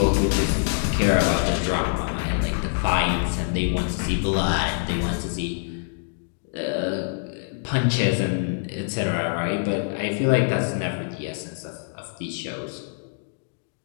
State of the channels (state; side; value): silent; right; digital silence